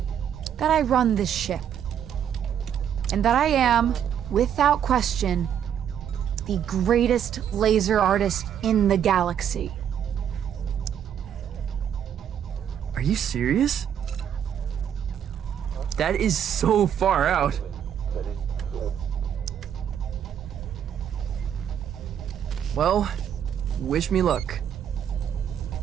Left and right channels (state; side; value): quieter; left; 9.1 dB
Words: That I run this ship. And that I am, without question, the greatest laser artist in the galaxy. Are you serious? That is so far out. Well, wish me luck.